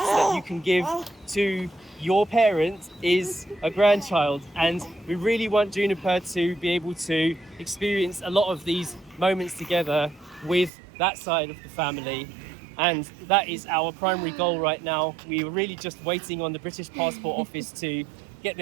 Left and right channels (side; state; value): left; drops out; at 10.7 s